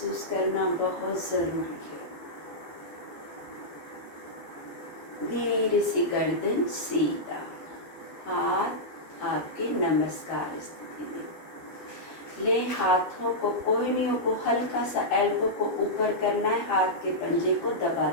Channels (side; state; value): right; late; 12 ms